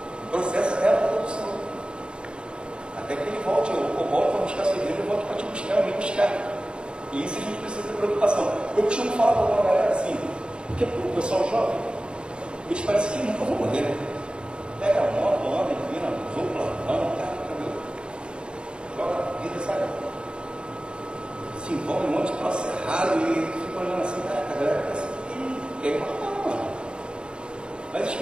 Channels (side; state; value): left; late; 0.053 ms